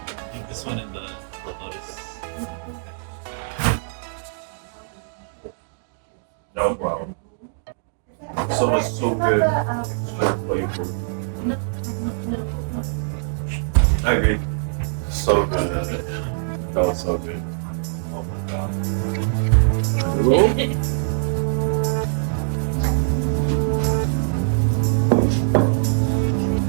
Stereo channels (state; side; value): silent; left; digital silence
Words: think this one and the lotus fish. That was wild. So much, so good texture, flavor. I agree. So good. That was so good. Oh my god.